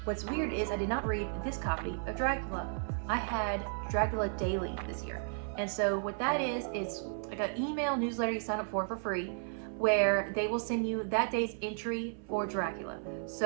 What's weird is I did not read this copy of Dracula. I had Dracula Daily this year. And so what that is, it's like an email newsletter you sign up for free, where they will send you that day's entry for Dracula.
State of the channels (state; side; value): silent; left; 55 dB below the other